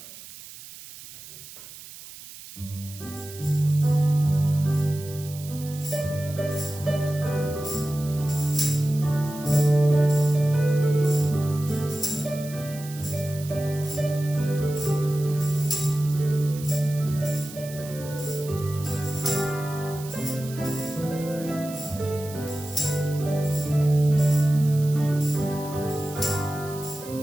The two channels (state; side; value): noise; right; hiss, 16 dB below the sound